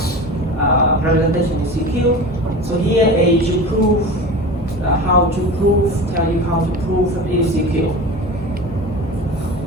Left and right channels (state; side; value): normal; both; correlation 0.32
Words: representation is secure. So here is to prove tell you how to prove that it is secure.